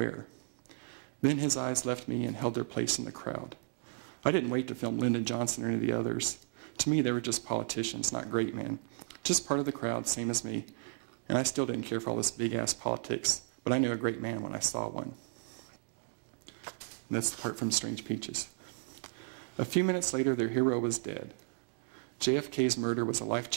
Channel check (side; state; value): left; silent; digital silence